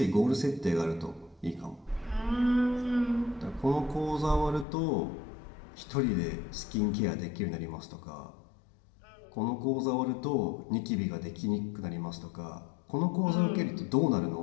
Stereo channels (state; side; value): drops out; right; at 4.7 s